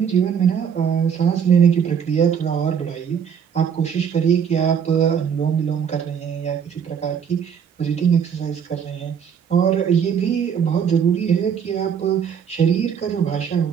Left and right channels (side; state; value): left; quieter; 7.6 dB